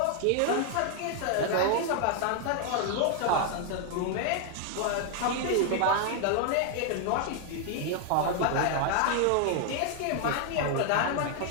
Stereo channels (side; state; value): both; different; correlation 0.00